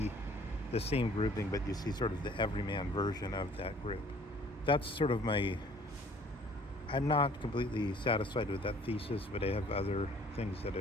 the same grouping, but you see sort of the everyman version of that group. That's sort of I'm not completely satisfied with that thesis, but I have other things that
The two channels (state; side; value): normal; both; correlation 0.55